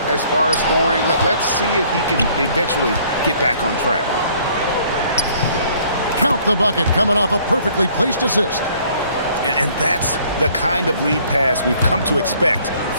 as far as scoring. Let's see if he can eventually get back on track. Count the bucket coming off a perfectly placed assist. And that's the kind of lead pass we've come to expect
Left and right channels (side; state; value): both; inverted; correlation -0.60